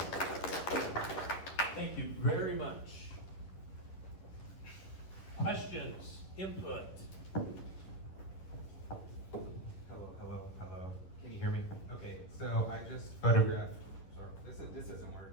Thank you very much. Questions, input? Hello. Can you hear me? Okay, so I just photographed, sorry, this doesn't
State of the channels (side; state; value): right; late; 10 ms